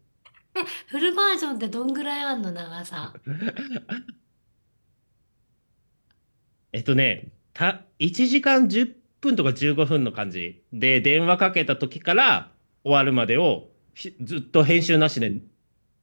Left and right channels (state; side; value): inverted; both; correlation -1.00